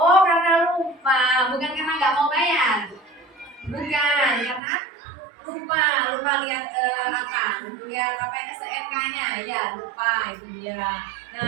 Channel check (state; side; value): drops out; left; at 4.6 s